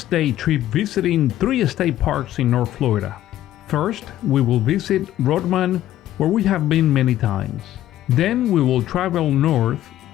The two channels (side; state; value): right; quieter; 13.3 dB